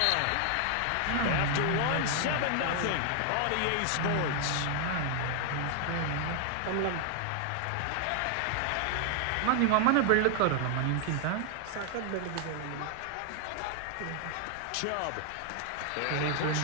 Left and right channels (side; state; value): both; different; correlation 0.00